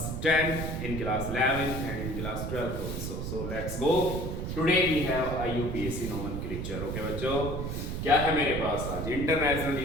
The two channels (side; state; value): right; noise; rumble, 4 dB below the sound